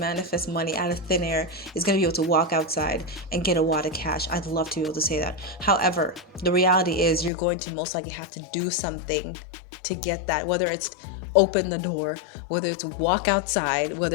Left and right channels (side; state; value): right; drops out; at 7.3 s